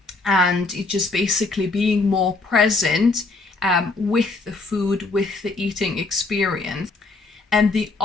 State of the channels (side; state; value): right; quieter; 3.6 dB